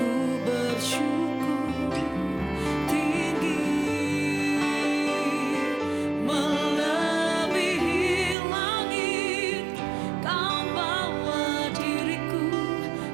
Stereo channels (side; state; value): left; drops out; at 8.3 s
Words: bersyukur tinggi, melebihi langit. Kau bawa diriku